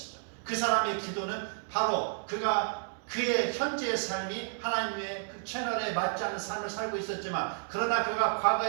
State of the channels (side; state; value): left; silent; digital silence